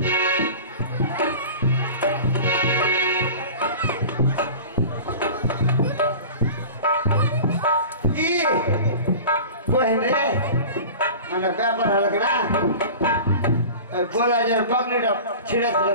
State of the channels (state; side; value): inverted; both; correlation -0.36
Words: বহেন রে মানে ব্যাপার হলো কি না গোলাজের পাগড়িটা ছিঁড়ে দিল